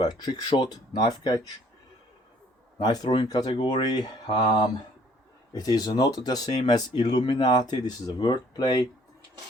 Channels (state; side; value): normal; both; correlation 0.60